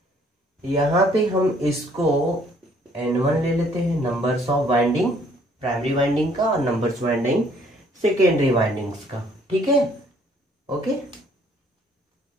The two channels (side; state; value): both; normal; correlation 0.62